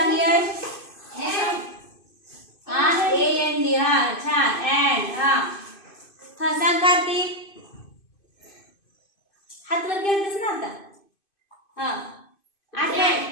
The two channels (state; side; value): late; right; 2.5 ms